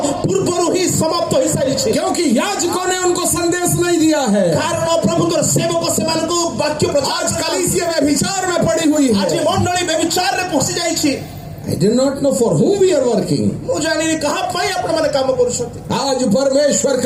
पूर्वरु ही समाप्त होई सारी छै क्योंकि याजकों ने उनको संदेश नहीं दिया है। कारण प्रभुଙ୍କର सेवक सेमानको वाक्य प्रचार आज कलीसिया में विचार में पड़ी हुई आज है। मंडली में विचार रे पहुंची जाई छी। I do not know for whom we are working. मु जानि कहां पाई आपण माने काम करूछथि। आज परमेश्वर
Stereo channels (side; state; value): both; identical; correlation 1.00